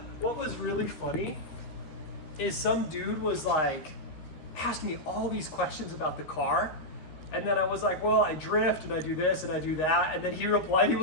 was really funny is some dude was like, asked me all these questions about the car. And then I was like, well, I drift and I do this and I do that. And then he replied, he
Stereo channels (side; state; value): right; late; 13 ms